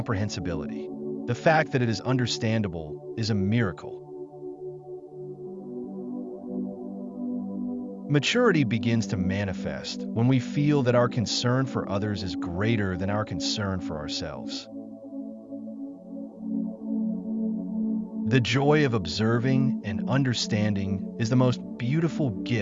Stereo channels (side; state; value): both; identical; correlation 1.00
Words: The fact that it is understandable is a miracle. Maturity begins to manifest when we feel that our concern for others is greater than our concern for ourselves. The joy of observing and understanding is the most beautiful